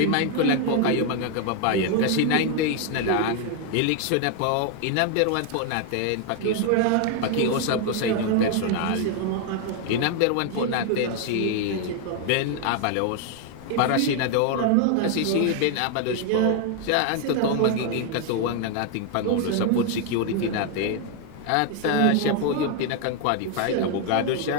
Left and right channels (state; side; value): different; both; correlation 0.00